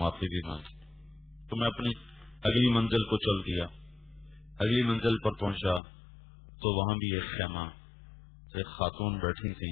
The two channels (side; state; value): right; drops out; at 5.8 s